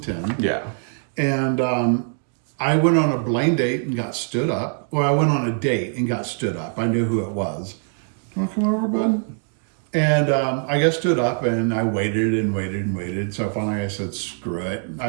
Yeah. And I went on a blind date and got stood up. Well, I went on a date and got stood up. I knew who it was. You want to come over, bud? And I got stood up, and I waited and waited and waited. So finally I said, screw it. I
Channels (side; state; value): left; silent; 56 dB below the other